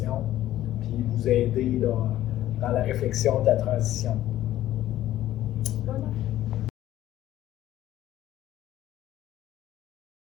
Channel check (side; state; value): right; quieter; 13.6 dB